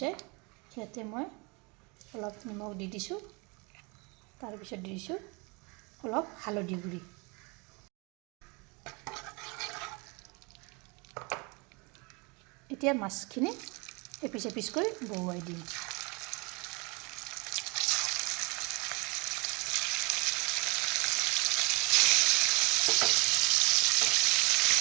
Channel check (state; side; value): quieter; left; 29.5 dB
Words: ইয়াতে মই অলপ নিমখ দি দিছোঁ। তাৰপিছত দি দিছোঁ অলপ হালধি গুড়ি। এতিয়া মাছখিনি এপিচ এপিচকৈ বহুৱাই দিম।